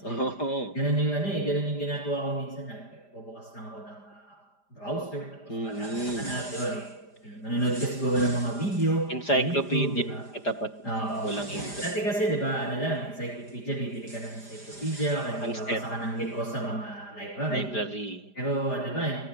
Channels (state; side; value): late; right; 5.0 ms